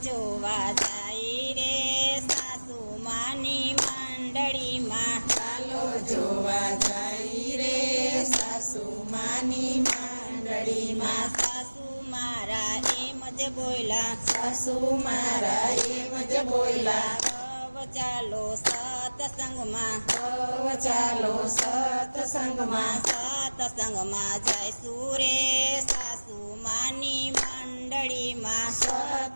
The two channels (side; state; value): both; inverted; correlation -1.00